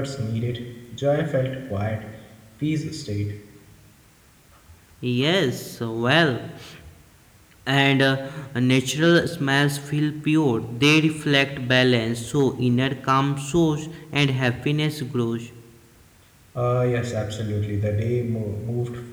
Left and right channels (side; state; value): both; identical; correlation 1.00